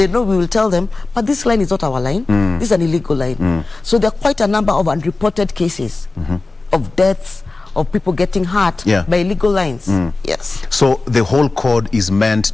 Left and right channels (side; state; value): right; quieter; 3.4 dB